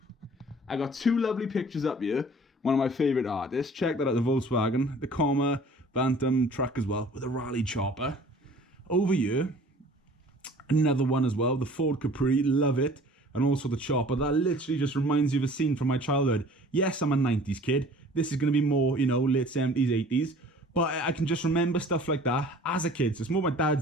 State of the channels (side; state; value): both; normal; correlation 0.49